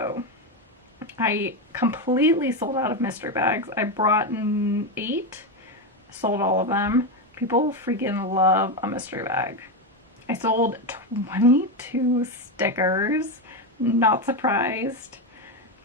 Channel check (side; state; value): both; normal; correlation 0.11